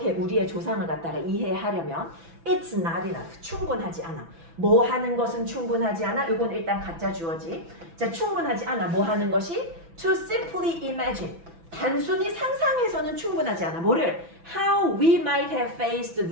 우리의 조상을 갖다가 이해하려면 It's not enough. 충분하지 않아. 뭐 하는 것은 충분하지 않아. 이건 일단 가짜 주어지. 자, 충분하지 않아. 뭐 하는 것이? To simply imagine. 단순히 상상해서는 충분하지 않아. 뭐를? How we might have faced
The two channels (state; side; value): late; left; 6.0 ms